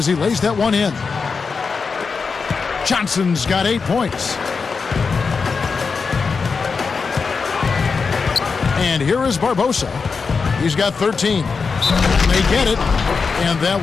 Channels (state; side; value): quieter; right; 5.0 dB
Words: he lays that one in. Johnson's got 8 points. And here is Barbosa. He's got 13. They get it. And that